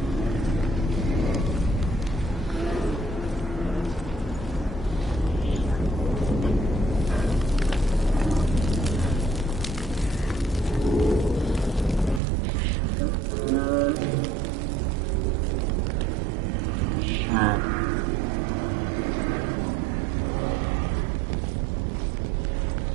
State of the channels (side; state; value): left; drops out; at 12.2 s